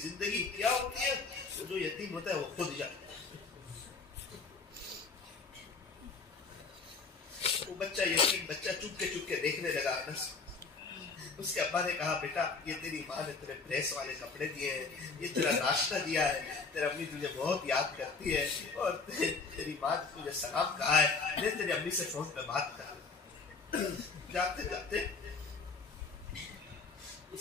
کیا ہوتی ہے؟ جو یتیم ہوتا ہے وہ خود جاتا ہے. وہ بچہ یتیم بچہ چپ کے دیکھنے لگا. اس کے ابا نے کہا بیٹا یہ تیری ماں نے تیرے پریس والے کپڑے دیے ہیں، یہ تیرا ناشتہ دیا ہے، تیری امی تجھے بہت یاد کرتی ہے اور تیری ماں نے تجھے سلام کہا ہے، لے تیری امی سے فون پہ بات کر۔ جاتے جاتے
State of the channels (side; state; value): right; quieter; 4.5 dB